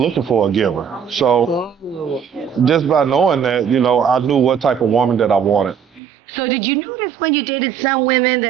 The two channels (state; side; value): drops out; left; at 6.0 s